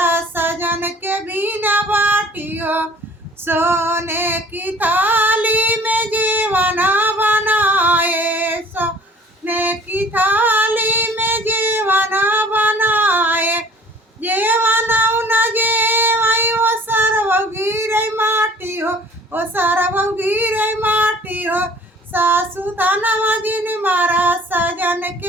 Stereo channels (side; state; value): both; normal; correlation 0.50